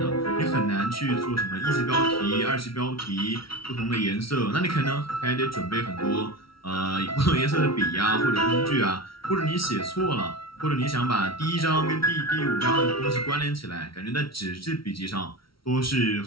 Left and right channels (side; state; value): right; late; 0.75 ms